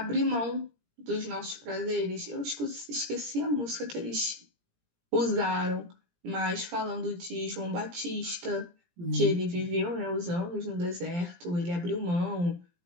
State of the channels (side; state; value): left; late; 17 ms